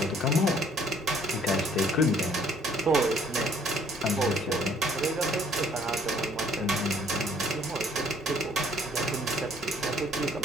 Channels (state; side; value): normal; both; correlation 0.60